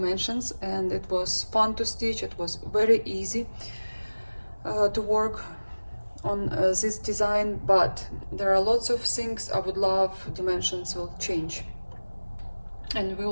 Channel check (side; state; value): both; inverted; correlation -1.00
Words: and it was fun to stitch. It was very easy to work on this design, but there are lots of things I would love Dimensions will change. And we